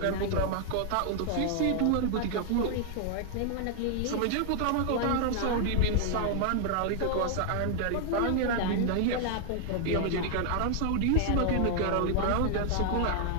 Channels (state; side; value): different; both; correlation 0.00